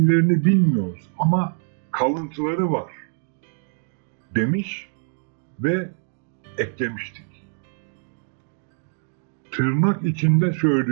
bilmiyoruz ama kalıntıları var demiş ve eklemiştik. Tırnak içinde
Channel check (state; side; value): silent; left; digital silence